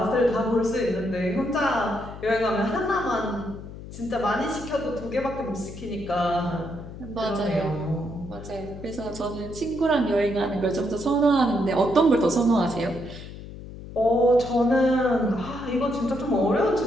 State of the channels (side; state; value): left; noise; hum, 13 dB below the sound